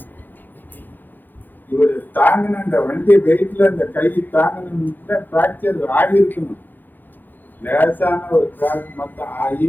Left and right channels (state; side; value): late; right; 0.088 ms